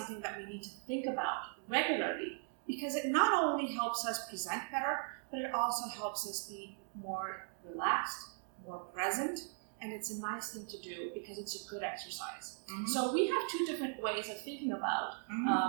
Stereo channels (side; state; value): left; silent; 52 dB below the other